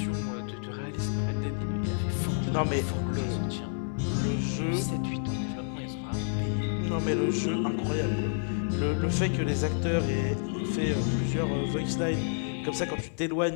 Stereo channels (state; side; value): silent; right; 57 dB below the other